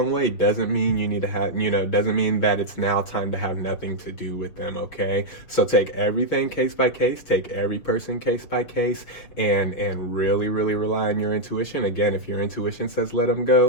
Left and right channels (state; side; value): late; right; 6.8 ms